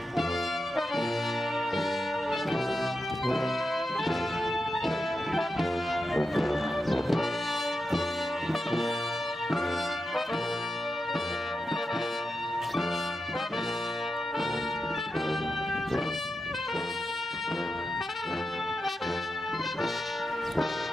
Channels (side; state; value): both; normal; correlation 0.89